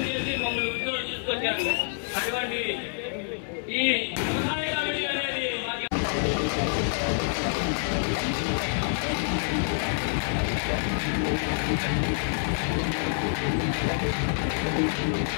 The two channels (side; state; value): right; silent; 60 dB below the other